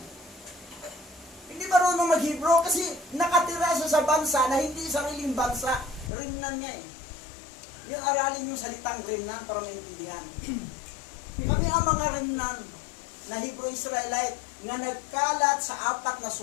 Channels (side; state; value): right; drops out; at 6.1 s